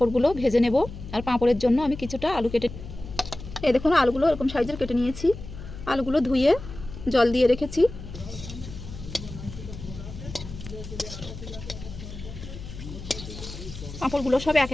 ভেজে নেব। আর পাঁপড়ের জন্য আমি কিছুটা আলু কেটে, এই দেখুন আলুগুলো এরকম সাইজের কেটে নিয়েছি। আলুগুলো ধুয়ে জল দিয়ে রেখেছি। পাঁপড়গুলো সব একে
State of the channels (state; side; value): noise; left; hum, 12 dB below the sound